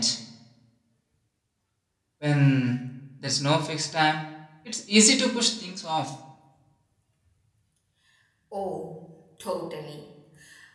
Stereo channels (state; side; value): identical; both; correlation 1.00